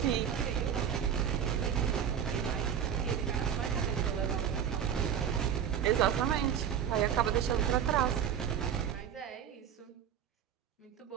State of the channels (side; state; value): left; quieter; 8.7 dB